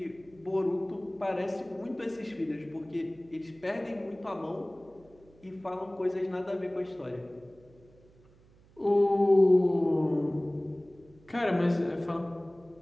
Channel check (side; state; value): right; noise; hum, 27 dB below the sound